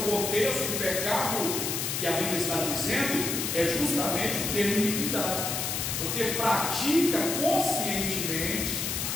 contexto do pecado que a Bíblia está dizendo, é justamente o termo iniquidade, porque pratica conscientemente,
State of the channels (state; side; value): noise; left; hiss, 1 dB below the sound